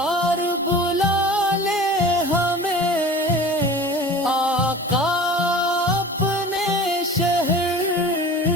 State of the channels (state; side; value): normal; both; correlation 0.40